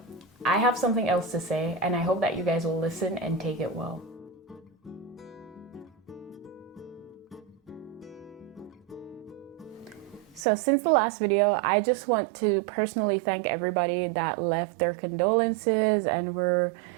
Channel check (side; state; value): left; drops out; at 10.5 s